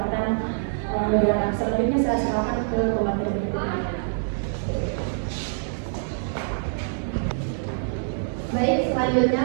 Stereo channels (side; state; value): left; silent; digital silence